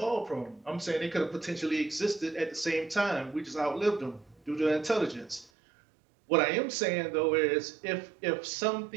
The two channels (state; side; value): drops out; left; at 5.5 s